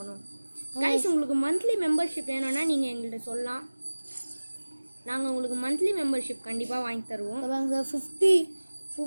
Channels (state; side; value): inverted; both; correlation -1.00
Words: கைஸ் உங்களுக்கு மந்த்லி மெம்பர்ஷிப் வேணும்னா நீங்கள் எங்கள்கிட்ட சொல்லலாம். நாங்கள் உங்களுக்கு மந்த்லி மெம்பர்ஷிப் கண்டிப்பாக வாங்கி தருவோம். சார்